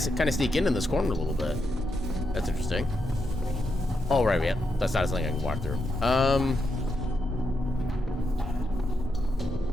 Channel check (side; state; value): both; normal; correlation 0.83